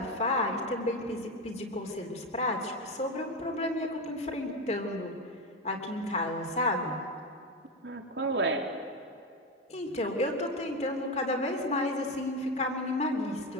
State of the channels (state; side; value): normal; both; correlation 0.15